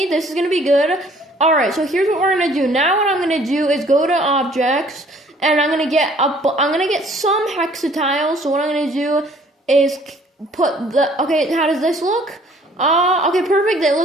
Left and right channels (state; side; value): normal; both; correlation 0.57